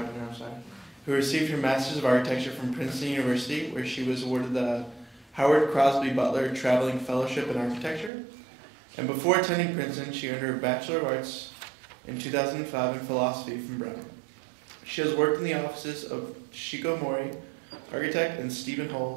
of Architecture from Princeton University, where she was awarded the Howard Crosby Butler Traveling Fellowship in Architecture. And before attending Princeton, she earned her Bachelor of Arts in 2005 in Philosophy from Brown. She has worked in the offices of Shiko Mori, architect, and Stephen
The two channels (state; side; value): drops out; left; at 8.1 s